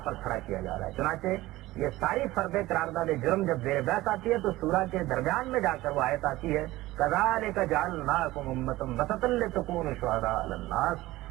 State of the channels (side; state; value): left; quieter; 17.7 dB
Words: پر کھڑا کیا جا رہا ہے. چنانچہ یہ ساری فرد قرارداد جرم جب زیر بحث آتی ہے تو سورہ کے درمیان میں جا کر وہ آیت آتی ہے کذالک جعلناکم امۃ وسطا لتکونوا شہداء علی الناس